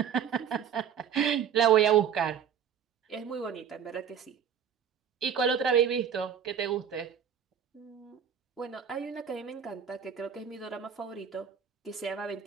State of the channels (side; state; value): left; quieter; 8.1 dB